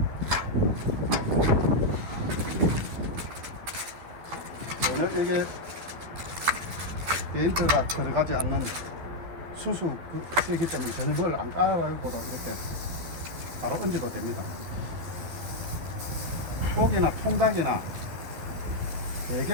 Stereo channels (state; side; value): late; left; 12 ms